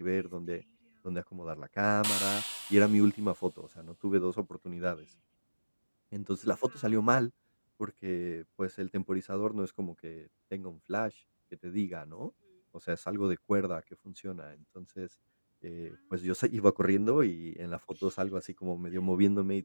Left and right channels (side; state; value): both; inverted; correlation -1.00